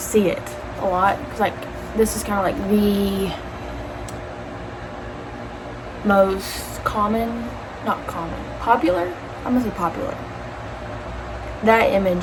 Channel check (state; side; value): identical; both; correlation 1.00